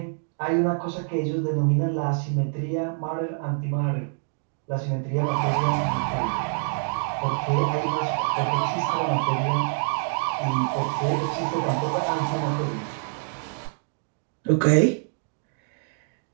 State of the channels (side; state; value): left; silent; 61 dB below the other